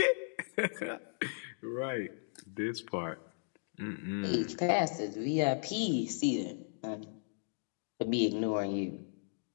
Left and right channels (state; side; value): silent; right; digital silence